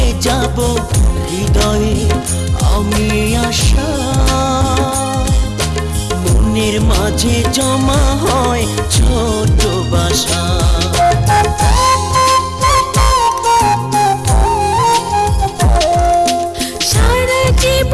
যাব হৃদয়ে আমি আশা, মনের মাঝে জমা হয় ছোট বাসা। সারা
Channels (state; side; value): identical; both; correlation 1.00